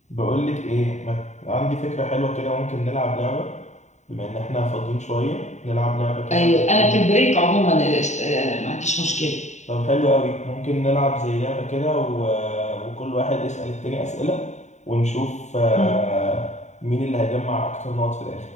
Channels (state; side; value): late; right; 0.34 ms